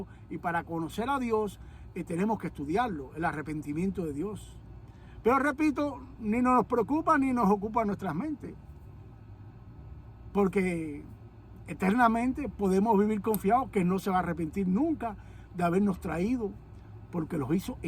y para conocer a Dios, tenemos que estudiarlo, el arrepentimiento de Dios. Pero repito, ni nos preocupa ni nos ocupa nuestras mentes, porque eternamente podemos vivir confiados que no se va a arrepentir nunca de habernos traído, porque los hizo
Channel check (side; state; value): both; identical; correlation 1.00